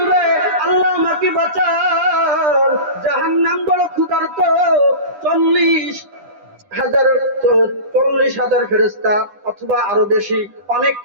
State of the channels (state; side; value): late; left; 10 ms